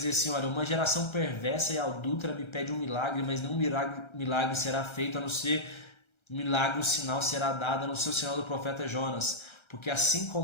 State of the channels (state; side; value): late; right; 1.3 ms